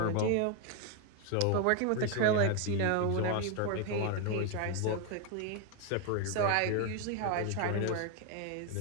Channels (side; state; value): both; different; correlation 0.01